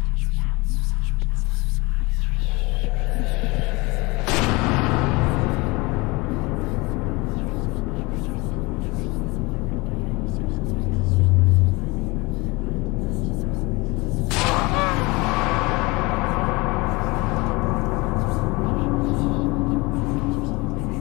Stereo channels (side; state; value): right; quieter; 24.7 dB